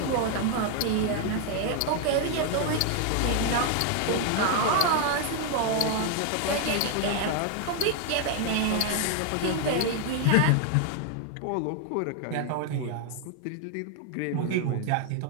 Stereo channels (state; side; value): different; both; correlation 0.00